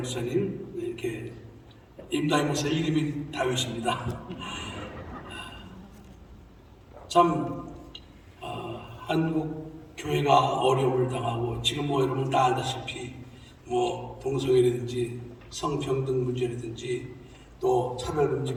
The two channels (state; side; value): identical; both; correlation 1.00